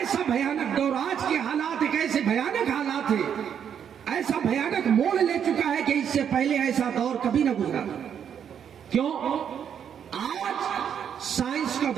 بھیانک دور، آج کے حالات ایک ایسے بھیانک حالات ہیں، ایسا بھیانک موڑ لے چکا ہے کہ اس سے پہلے ایسا دور کبھی نہ گزرا. کیوں؟ آج سائنس کا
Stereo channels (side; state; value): left; quieter; 8.4 dB